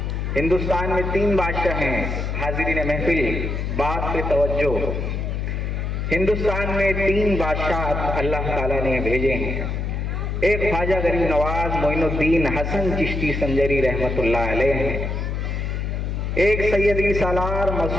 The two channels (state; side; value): noise; left; hum, 2 dB below the sound